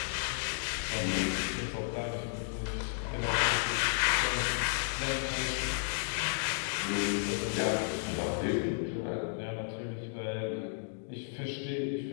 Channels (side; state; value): right; silent; digital silence